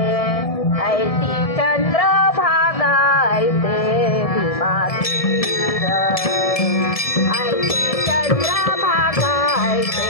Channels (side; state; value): right; late; 1.7 ms